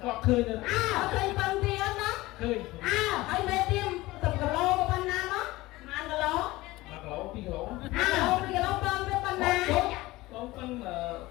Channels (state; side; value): quieter; right; 19.2 dB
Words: khơi được khơi bằng tiền đó khơi ai mê tim tập cà lô của ban nam đó mà ăn cà lô mà cà lô pi cà lô pi cà lô bơm với ban nam lô bơm là